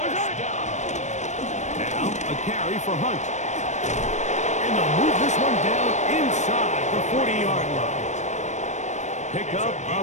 First down. Now a carry for Hunt. And they'll move this one down inside the 40-yard line. Pickup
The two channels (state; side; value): late; right; 0.34 ms